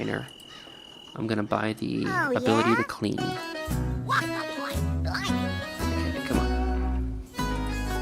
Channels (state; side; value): identical; both; correlation 1.00